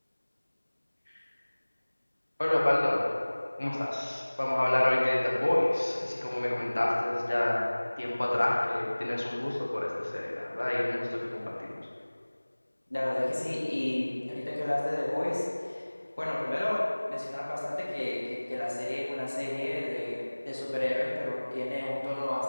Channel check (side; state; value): both; inverted; correlation -1.00